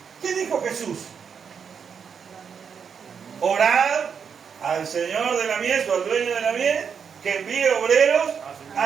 ¿Qué dijo Jesús? Orad al Señor de la mies o al dueño de la mies que envíe obreros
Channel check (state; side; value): quieter; left; 6.7 dB